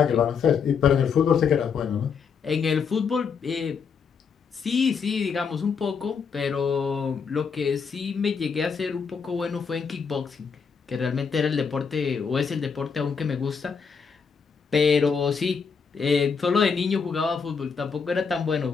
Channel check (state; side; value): quieter; right; 6.0 dB